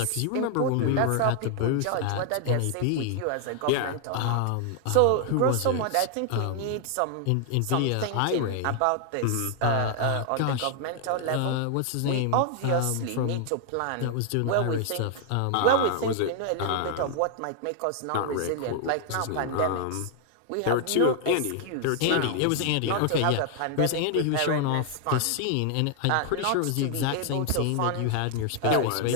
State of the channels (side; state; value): both; different; correlation 0.00